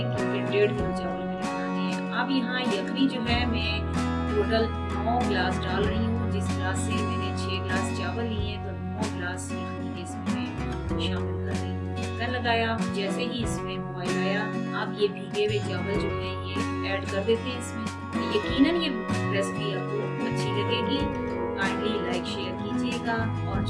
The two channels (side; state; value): both; identical; correlation 1.00